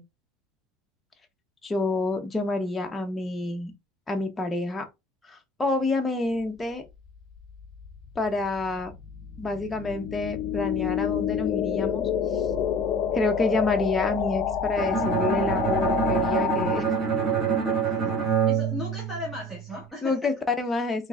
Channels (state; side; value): normal; both; correlation 0.46